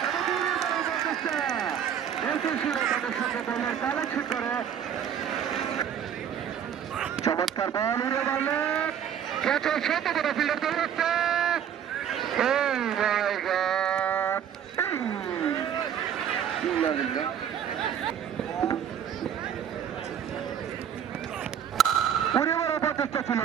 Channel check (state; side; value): quieter; left; 9.0 dB